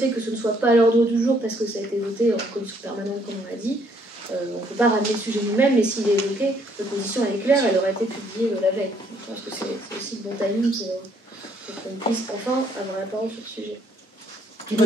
que ce ne soit pas à l'ordre du jour parce que ça a été voté en commission permanente, comme on l'a dit, on ne peut pas ramener le sujet nous-mêmes, mais s'il est évoqué, notre position est claire, elle aurait été publiée la veille. Donc, je pense que c'est aussi le bon timing pour qu'on puisse enfin avoir la parole sur ce sujet. De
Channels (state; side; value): normal; both; correlation 0.67